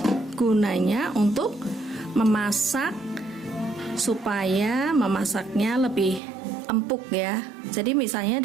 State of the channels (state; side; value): drops out; left; at 6.2 s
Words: gunanya untuk memasak supaya memasaknya lebih empuk ya. Jadi misalnya